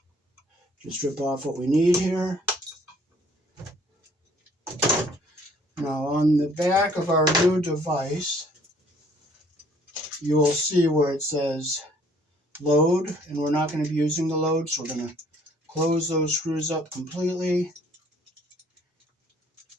just strip off what we need here. Now on the back of our new device, you will see where it says load, and we're not going to be using the load, so we're going to close those screws up completely.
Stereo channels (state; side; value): normal; both; correlation 0.60